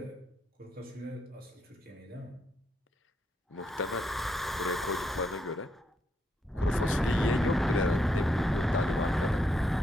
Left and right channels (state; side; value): normal; both; correlation 0.79